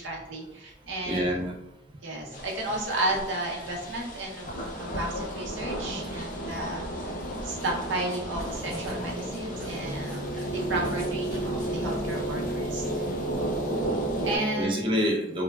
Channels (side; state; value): both; normal; correlation 0.29